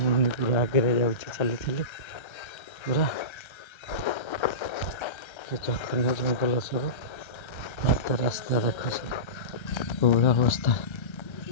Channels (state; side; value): late; right; 1.3 ms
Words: ମୁନି ପୁରା ଆଗରେ ଯାଉଛି ଚାଲି ଚାଲି ପୁରା ଏ ଜଘନ୍ୟ ଜଙ୍ଗଲ ସବୁ ରାସ୍ତା ଦେଖ ସବୁ କୋଉଭଳିଆ ଅବସ୍ଥା